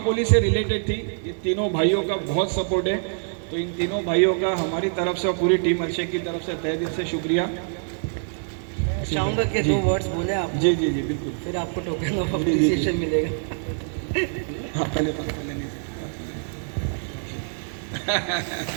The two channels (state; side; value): silent; left; 62 dB below the other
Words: से रिलेटेड थी, ये तीनों भाइयों का बहुत सपोर्ट है। तो इन तीनों भाइयों का हमारी तरफ से और पूरी टीम अल्शेख की तरफ से तहे दिल से शुक्रिया। चाहूँगा कि 2 वर्ड्स बोले आप, जी जी जी बिल्कुल। फिर आपको टोकन ऑफ अप्रिसिएशन मिलेगा। हाँ पहले